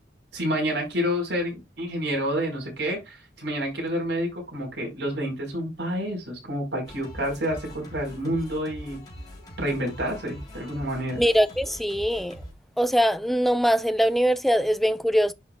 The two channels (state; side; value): normal; both; correlation 0.77